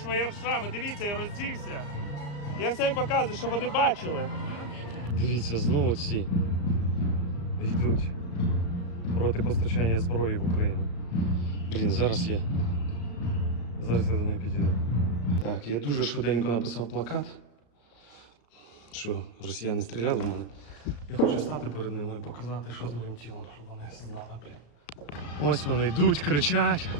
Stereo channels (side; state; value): right; late; 34 ms